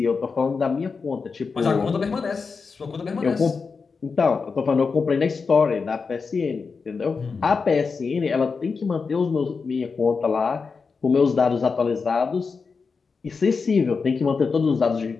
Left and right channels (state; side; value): quieter; right; 5.0 dB